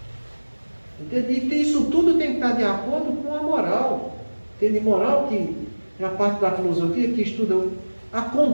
Entende? E isso tudo tem que estar de acordo com a moral. Entende? Moral que é a parte da filosofia que estuda a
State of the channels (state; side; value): inverted; both; correlation -1.00